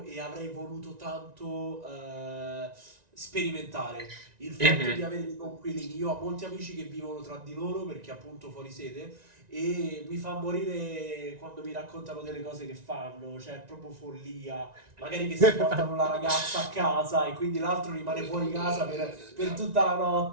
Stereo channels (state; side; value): late; left; 1.9 ms